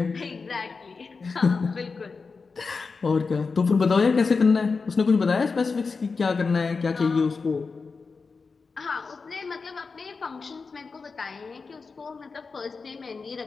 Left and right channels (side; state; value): right; quieter; 4.6 dB